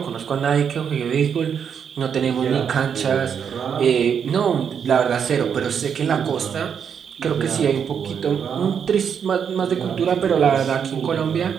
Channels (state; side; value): quieter; left; 7.5 dB